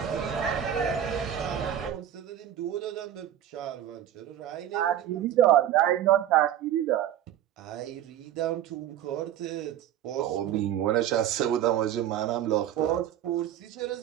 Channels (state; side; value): quieter; left; 11.0 dB